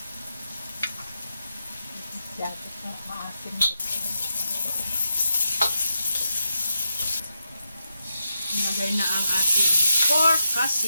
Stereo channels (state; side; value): inverted; both; correlation -0.84